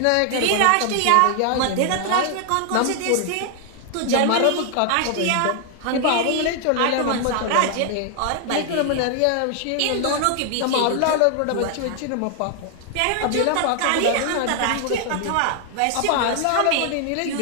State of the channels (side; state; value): both; different; correlation 0.00